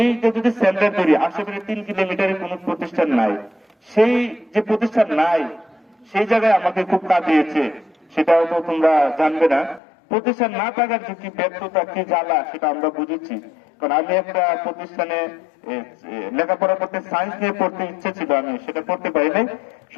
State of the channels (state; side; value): drops out; right; at 9.8 s